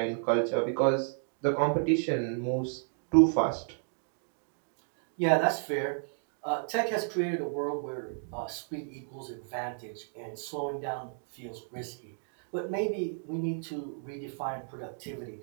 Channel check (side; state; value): left; silent; digital silence